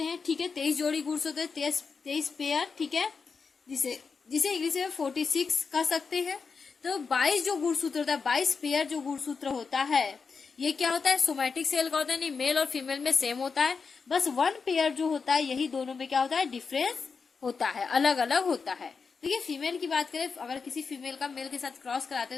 हैं, ठीक है। 23 जोड़ी गुणसूत्र, 23 पेयर, ठीक है, जिसे इंग्लिश में 46 कह सकते हैं। तो 22 जो गुणसूत्र होता है, 22 पेयर जो गुणसूत्र होता है, ये क्या होता है, सोमैटिक सेल का होता है, नहीं मेल और फीमेल में सेम होता है, बस 1 पेयर जो होता है यही दोनों में क्या होता है, डिफरेंस होता है, अलग अलग होता है। देखिए फीमेल की बात करें, अगर किसी फीमेल का मेल के साथ क्रॉस कराते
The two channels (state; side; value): quieter; right; 5.2 dB